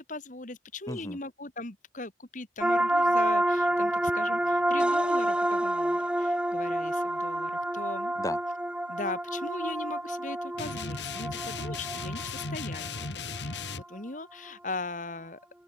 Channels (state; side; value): normal; both; correlation 0.83